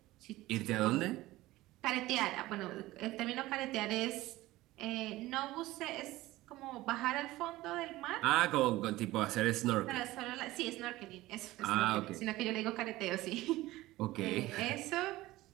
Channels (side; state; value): left; quieter; 17.7 dB